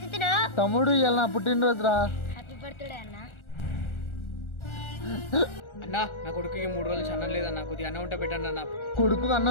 తమ్ముడు ఇవాళ నా పుట్టినరోజురా. హ్యాపీ బర్త్డే అన్న. అన్నా నా కొడుకుకి 3 రోజులు అన్నం లేదన్నా, కొద్దిగా అన్నం ఉంటే పెట్టండి అన్న. కొడుకు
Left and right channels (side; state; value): right; late; 1.4 ms